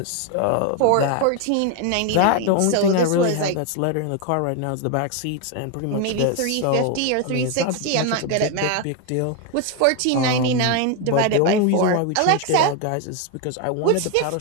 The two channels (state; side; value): different; both; correlation 0.01